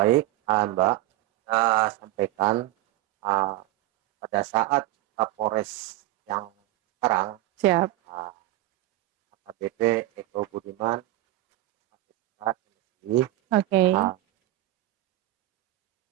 Mbak, sampaikan ah, pada saat Kapolres yang sekarang, Siap. ah, AKBP Eko Budiman, ini, Oke. ah,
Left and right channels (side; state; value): left; quieter; 16.2 dB